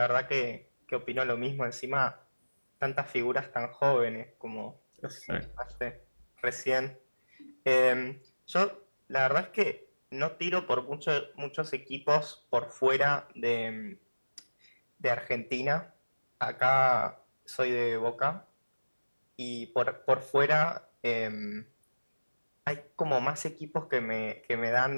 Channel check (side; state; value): both; inverted; correlation -1.00